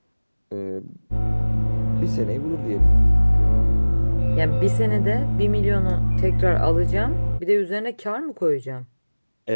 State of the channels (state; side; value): inverted; both; correlation -1.00